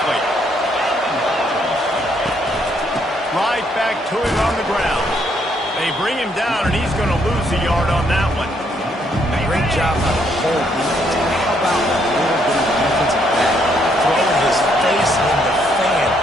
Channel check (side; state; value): both; normal; correlation 0.71